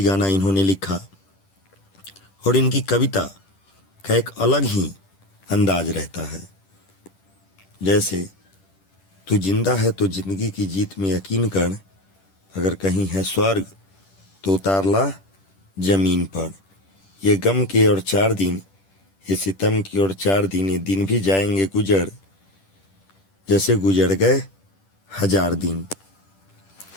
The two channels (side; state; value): right; late; 10 ms